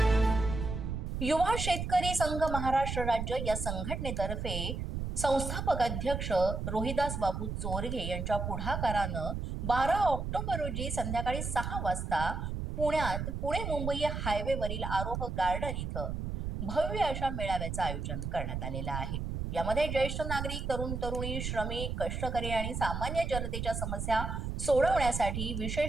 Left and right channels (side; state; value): right; noise; rumble, 4 dB below the sound